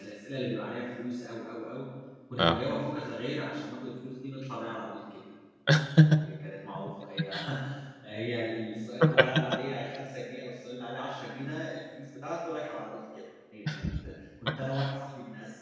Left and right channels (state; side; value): identical; both; correlation 1.00